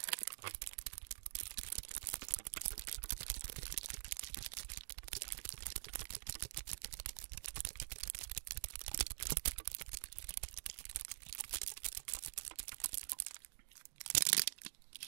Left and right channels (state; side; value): silent; left; digital silence